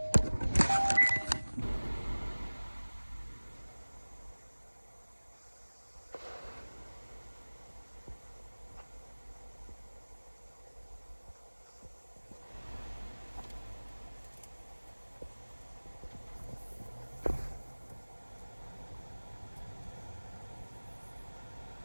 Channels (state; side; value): inverted; both; correlation -1.00